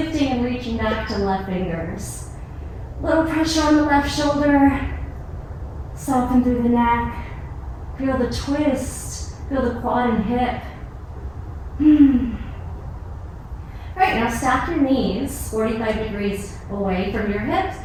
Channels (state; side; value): identical; both; correlation 1.00